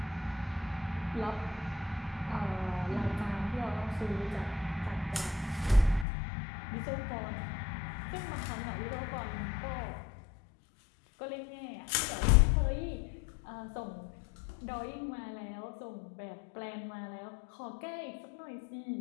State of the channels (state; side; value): drops out; right; at 6.1 s